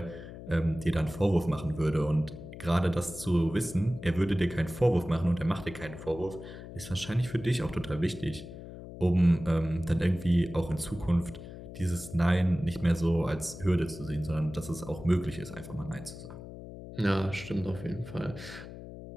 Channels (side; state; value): left; noise; hum, 13 dB below the sound